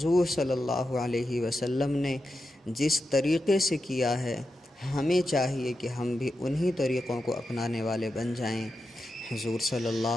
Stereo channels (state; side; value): normal; both; correlation 0.89